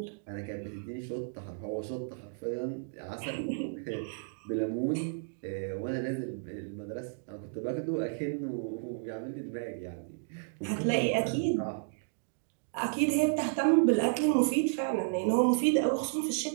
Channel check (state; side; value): silent; left; digital silence